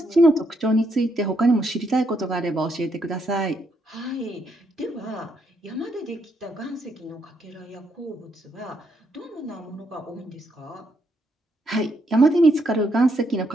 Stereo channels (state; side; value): normal; both; correlation 0.76